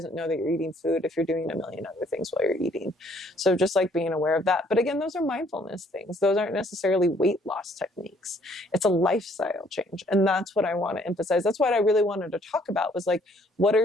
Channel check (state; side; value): normal; both; correlation 0.63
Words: know that you're eating food if you're doing a million other things while you're eating. So just like being aware of that. But again, those are mindfulness things. Those aren't necessarily weight loss techniques. It's a lifestyle change. And that's what I want to emphasize. That's what I really wanted to talk about, was like, what